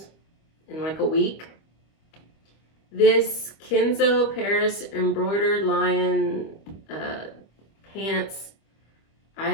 in like a week. This Kenzo Paris embroidered lion pants, I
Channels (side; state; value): right; late; 25 ms